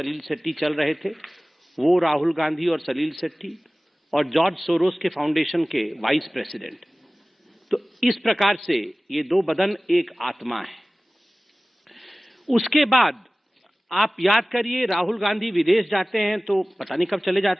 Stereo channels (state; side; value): normal; both; correlation 0.98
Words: शेट्टी चल रहे थे, वो राहुल गांधी और सलील शेट्टी, और जॉर्ज सोरोस के फाउंडेशन के वाइस प्रेसिडेंट। तो इस प्रकार से ये दो बदन एक आत्मा है। उसके बाद आप याद करिए, राहुल गांधी विदेश जाते हैं तो पता नहीं कब चले